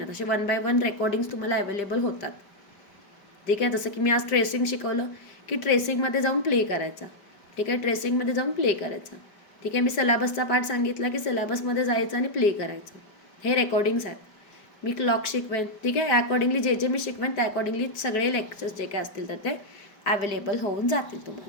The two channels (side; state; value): right; late; 5.1 ms